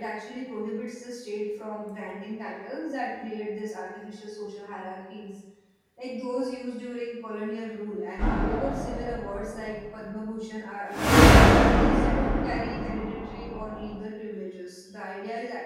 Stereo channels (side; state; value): both; identical; correlation 1.00